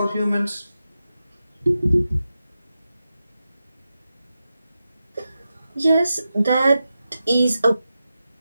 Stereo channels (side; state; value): both; inverted; correlation -0.91